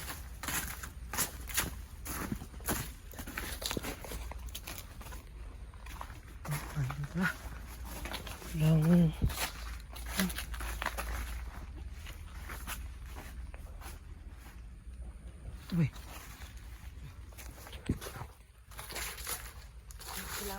Langan. Ito ba?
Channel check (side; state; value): both; identical; correlation 1.00